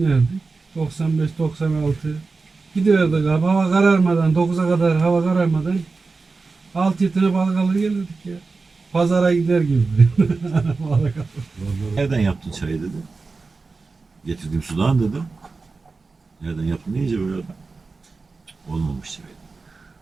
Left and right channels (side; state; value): left; quieter; 4.1 dB